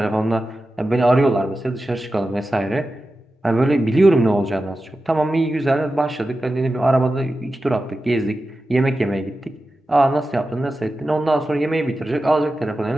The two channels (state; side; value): normal; both; correlation 0.93